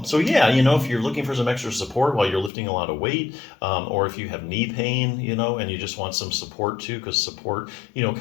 So yeah, if you're looking for some extra support while you're lifting a lot of weight, or if you have knee pain, and you just want some support too, because support,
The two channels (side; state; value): right; drops out; at 2.5 s